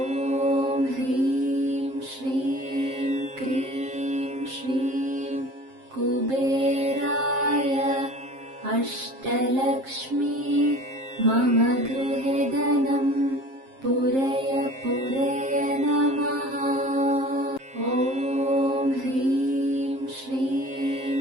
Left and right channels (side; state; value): left; late; 7.5 ms